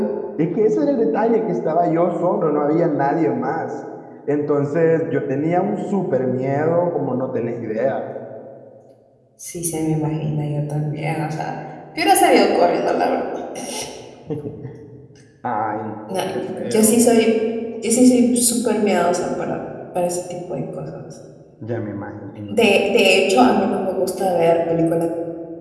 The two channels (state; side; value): identical; both; correlation 1.00